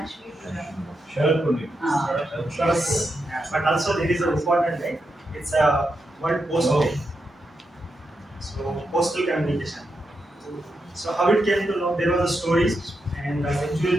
Sharad Puri. Sharad Puri. Yeah, but also there is an important day. It's a World Post Oh. Day. So postal communication. So how it came to know, there was a story, and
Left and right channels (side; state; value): both; normal; correlation 0.85